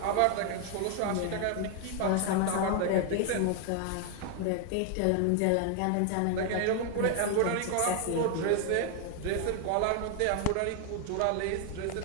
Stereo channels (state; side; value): different; both; correlation 0.01